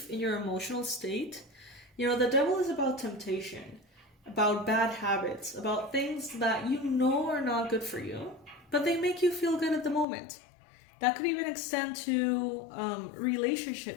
in your emotional state. The devil is about temptation, about bad habits, about things that you know are not good for you, but they make you feel good at the moment. That could even extend to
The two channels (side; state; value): right; drops out; at 10.1 s